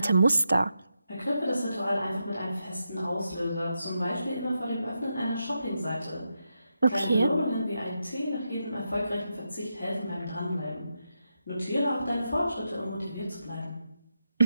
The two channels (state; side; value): inverted; both; correlation -0.86